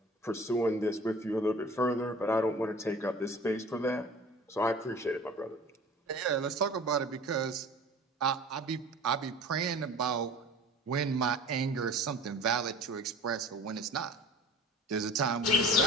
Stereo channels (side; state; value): both; normal; correlation 0.41